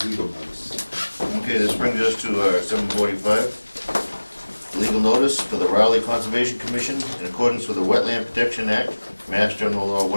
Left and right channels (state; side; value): inverted; both; correlation -1.00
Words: legal notice. Okay, this brings us to 7:45. Legal notice for the Raleigh Conservation Commission in accordance with the Wetland Protection Act, Mass General Law